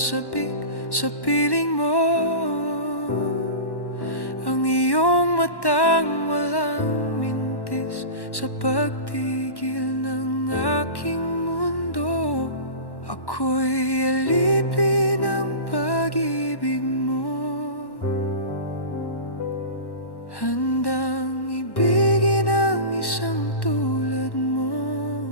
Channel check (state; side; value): late; right; 1.1 ms